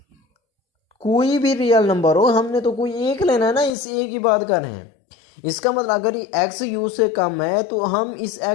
कोई भी रियल नंबर हो, हमने तो कोई एक लेना है ना, इस a की बात कर रहे हैं। इसका मतलब अगर ये x u से कम है तो हम इस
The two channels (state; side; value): drops out; right; at 3.7 s